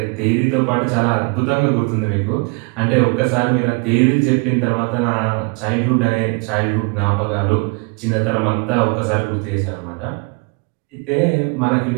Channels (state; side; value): quieter; left; 31.1 dB